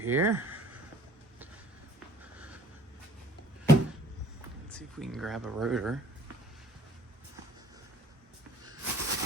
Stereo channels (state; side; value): normal; both; correlation 0.54